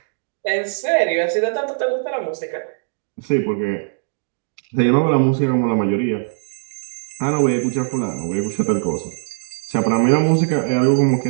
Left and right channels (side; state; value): left; silent; digital silence